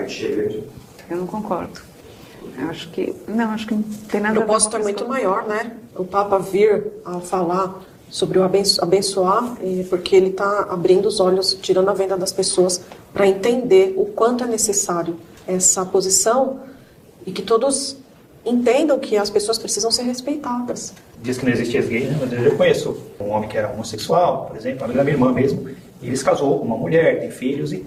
encher a igreja? Eu não concordo. Eu acho que não tem nada a ver. O propósito é muito maior, né? O Papa vir a falar sobre o abençoar, porque ele está abrindo os olhos, tirando a venda das pessoas para entender o quanto é necessário essa posição e que todos entendam que as pessoas precisam ser respeitadas. Diz que não existe ex-gay, né? Mas eu conheço um homem que era homossexual, por exemplo, amigo da minha irmã mesmo, e ele se casou com uma mulher, tem filhos e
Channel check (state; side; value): identical; both; correlation 1.00